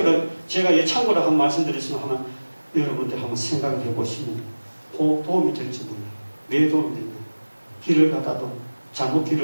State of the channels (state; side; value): inverted; both; correlation -1.00